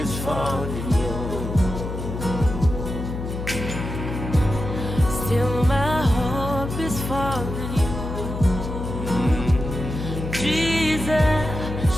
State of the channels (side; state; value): left; noise; hum, 6 dB below the sound